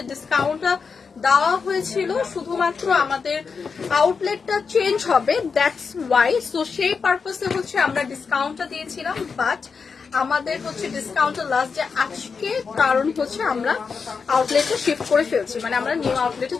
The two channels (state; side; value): quieter; right; 5.4 dB